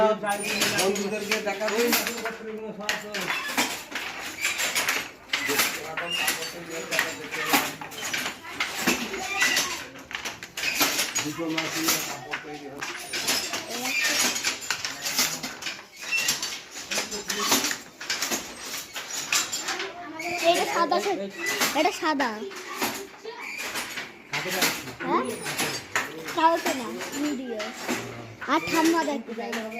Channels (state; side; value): identical; both; correlation 1.00